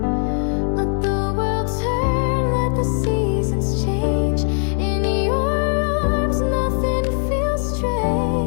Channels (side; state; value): right; silent; digital silence